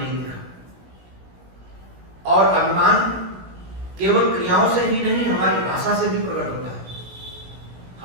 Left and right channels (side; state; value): left; late; 16 ms